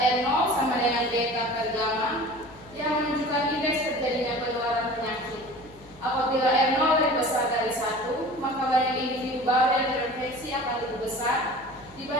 sama dengan beta per gamma yang menunjukkan indeks terjadinya penularan penyakit. Apabila R0 lebih besar dari 1, maka banyak individu baru yang terinfeksi akan lebih besar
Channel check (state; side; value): noise; left; hum, 23 dB below the sound